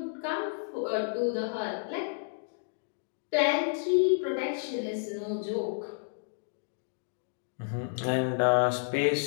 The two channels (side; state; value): right; silent; digital silence